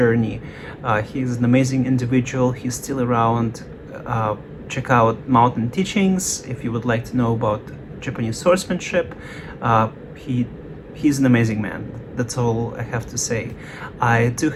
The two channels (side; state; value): both; identical; correlation 1.00